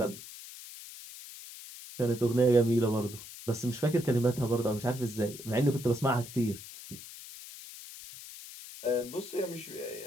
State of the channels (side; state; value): left; noise; hiss, 14 dB below the sound